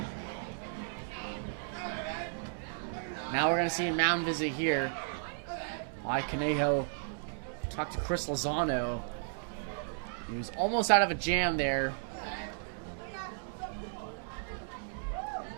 Now we're going to see a mound visit here by Conejo. Talk to Chris Lozano. He was almost out of a jam there.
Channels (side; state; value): left; silent; digital silence